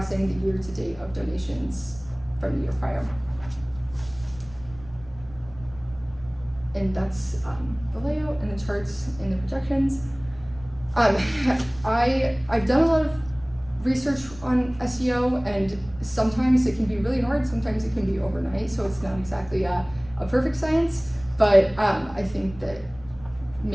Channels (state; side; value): noise; right; rumble, 20 dB below the sound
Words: the year to date of donations from the year prior. And that's the layout and the charts and the projections. I've done a lot of research on SEO, and sometimes it can be really hard, sometimes it can be overnight, so it's not exactly a perfect science, but I think that